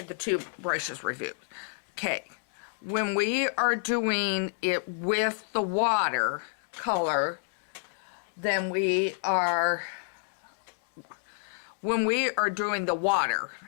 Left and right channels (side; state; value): right; silent; 59 dB below the other